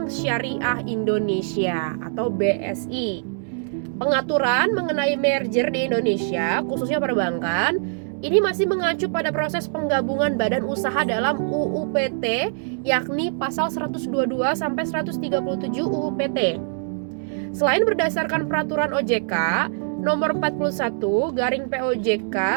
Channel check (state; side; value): silent; left; digital silence